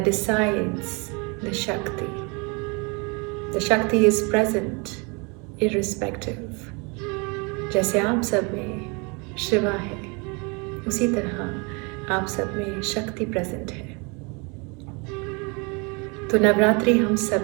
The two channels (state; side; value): quieter; left; 30.8 dB